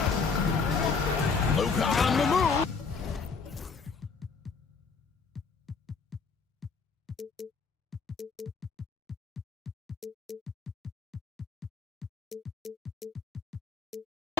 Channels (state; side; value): quieter; right; 5.1 dB